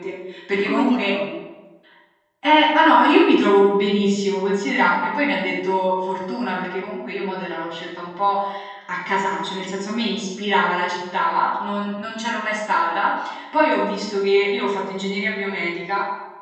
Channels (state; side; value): identical; both; correlation 1.00